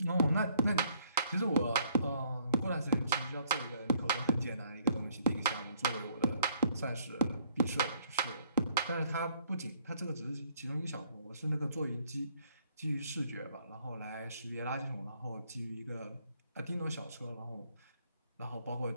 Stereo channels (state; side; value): inverted; both; correlation -0.65